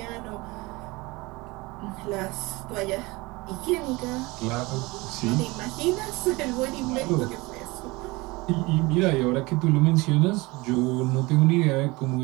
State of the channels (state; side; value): quieter; left; 23.2 dB